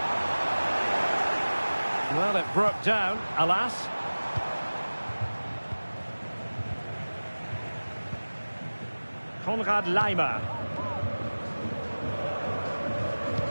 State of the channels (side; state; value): both; inverted; correlation -1.00